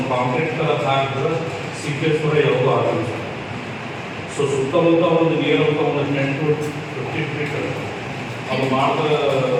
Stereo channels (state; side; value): identical; both; correlation 1.00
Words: ಕಾಂಕ್ರೀಟ್ ಹಾಕಿದ್ರೆ ಸೀಕೇಜ್ ಕೂಡ ಯಾವುದೂ ಆಗಲ್ಲ. ಸೊ ಸುತ್ತಮುತ್ತ ಒಂದು ನೀರು ಅಂತ ಒಂದು 10 to 15 feet ಅದು ಮಾಡಿದ್ರೆ